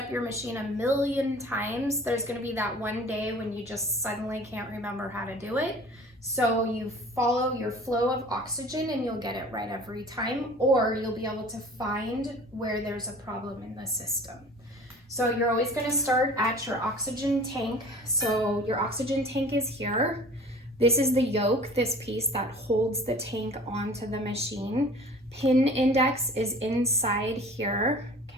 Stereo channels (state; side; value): normal; both; correlation 0.45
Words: your machine a million times, there's gonna be that one day when you just suddenly can't remember how to do it. So you follow your flow of oxygen and you'll get it right every time, or you'll be able to find where there's a problem in the system. So you're always going to start at your oxygen tank. So your oxygen tank is here. This is the yoke, this piece that holds the tank onto the machine. Pin index is inside here,